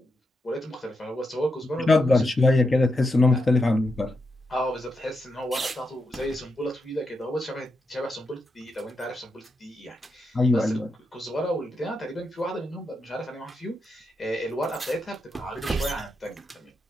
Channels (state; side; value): normal; both; correlation 0.85